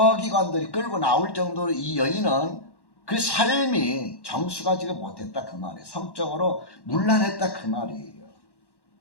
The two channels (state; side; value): late; right; 1.1 ms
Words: 끌고 나올 정도로 이 여인은 그 삶이 정수가지가 못했다 그 말이에요. 성적으로 문란했다 그 말이에요.